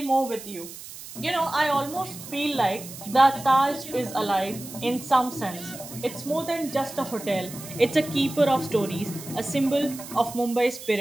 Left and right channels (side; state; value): right; noise; hiss, 14 dB below the sound